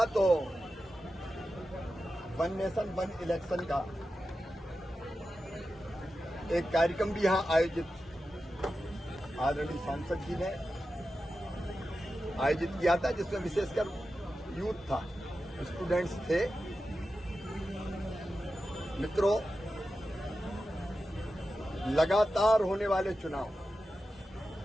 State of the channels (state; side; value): normal; both; correlation 0.91